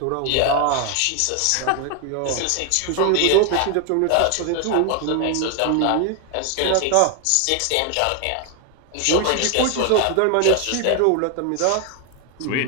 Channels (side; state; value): both; different; correlation 0.01